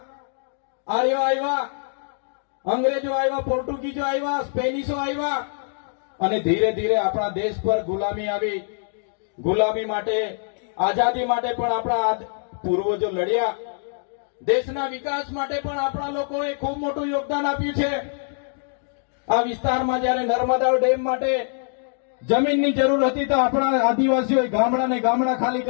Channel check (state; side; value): silent; right; 63 dB below the other